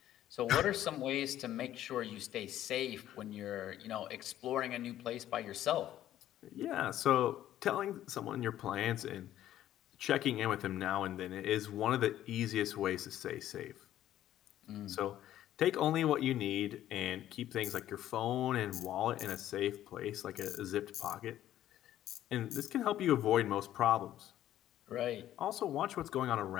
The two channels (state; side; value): quieter; right; 12.5 dB